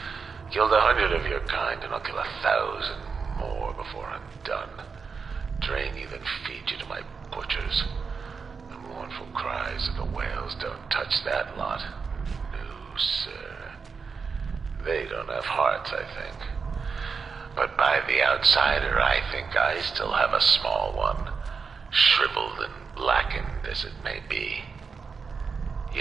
Killed 100 of your kind, and I'll kill 1,000 more before I'm done. Drain you, then feed you to my butchers. The mournful cries of the whales don't touch that lot. No, sir. They don't have hearts, I think. But by the outsider, I think I still have a small one. Shriveled and blackened as it may be.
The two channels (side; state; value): left; quieter; 5.3 dB